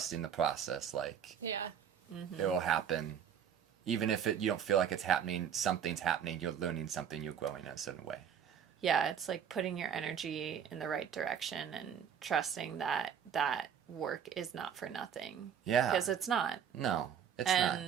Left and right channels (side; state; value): left; quieter; 8.3 dB